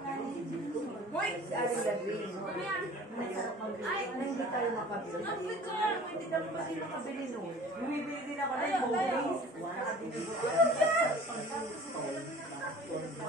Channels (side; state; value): both; normal; correlation 0.46